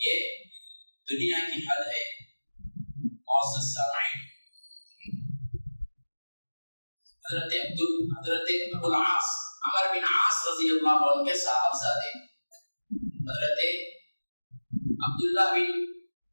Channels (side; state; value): both; inverted; correlation -1.00